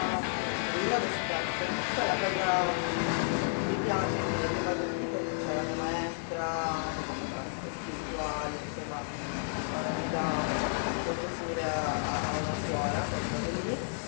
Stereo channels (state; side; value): silent; right; digital silence